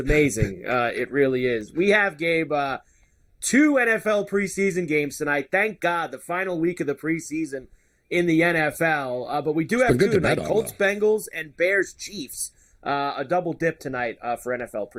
It really is. We have, Gabe, 2 NFL preseason games tonight. Thank God, the final week of the preseason in the NFL. But we do have 2 tonight: Colts, Bengals, and Bears, Chiefs. A double dip tonight for NFL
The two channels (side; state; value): both; identical; correlation 1.00